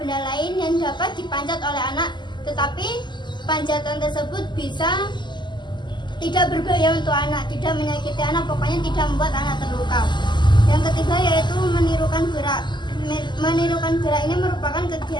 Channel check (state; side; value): late; right; 0.22 ms